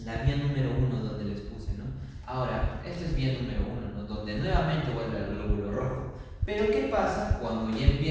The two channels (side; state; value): both; identical; correlation 1.00